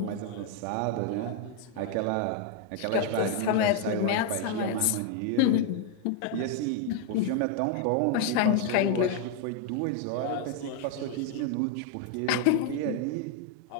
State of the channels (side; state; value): both; different; correlation 0.00